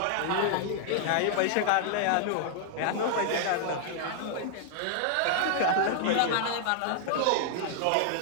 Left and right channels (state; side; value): different; both; correlation -0.01